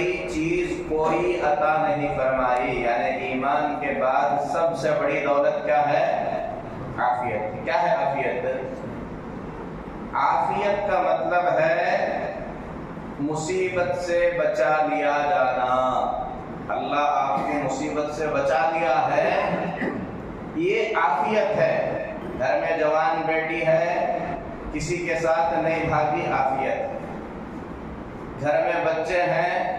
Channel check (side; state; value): both; identical; correlation 1.00